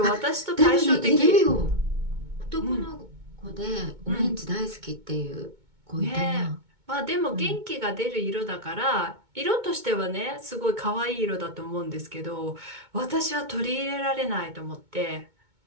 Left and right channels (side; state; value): left; late; 2.2 ms